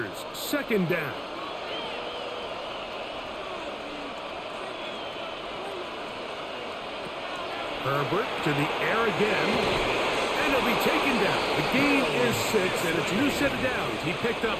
second down. Herbert to the air again. And he'll be taken down. The gain is 6, and it's a new set of downs. He picked up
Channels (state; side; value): identical; both; correlation 1.00